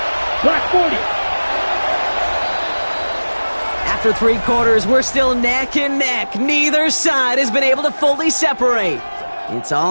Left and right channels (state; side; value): inverted; both; correlation -1.00